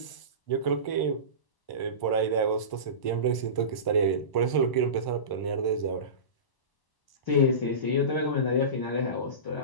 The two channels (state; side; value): late; right; 1.0 ms